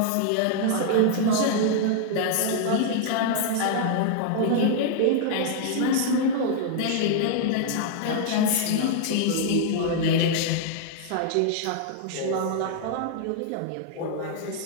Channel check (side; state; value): both; different; correlation -0.01